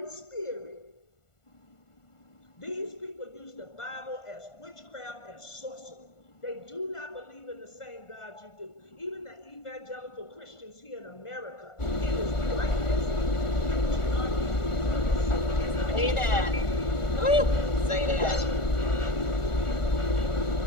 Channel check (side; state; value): right; late; 1.4 ms